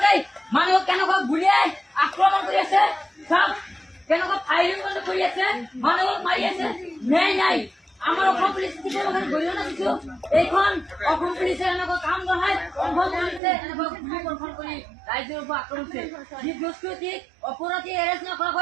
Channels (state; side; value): drops out; left; at 13.4 s